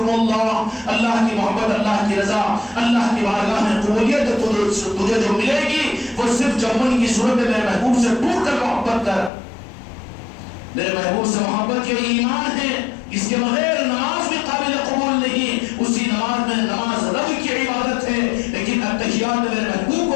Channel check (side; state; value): right; drops out; at 9.3 s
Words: اللہ. اللہ کی محبت، اللہ کی رضا، اللہ کی بارگاہ میں قبولیت تجھے جو ملے گی وہ صرف جمن کی صورت میں میرے محبوب سے ٹوٹ کر محبت کر. میرے محبوب سے محبت یہ ایمان ہے، اس کے بغیر نماز بھی قابل قبول نہیں. اسی نماز میں، نماز رب کی عبادت ہے، لیکن التحیات میں میرے محبوب